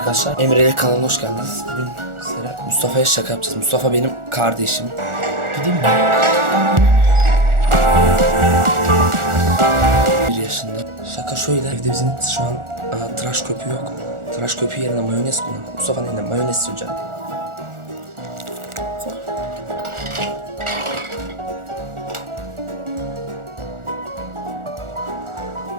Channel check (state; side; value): late; left; 1.4 ms